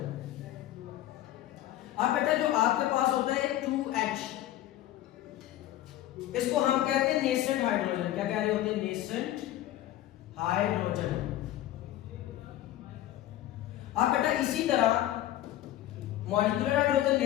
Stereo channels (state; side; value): quieter; right; 13.8 dB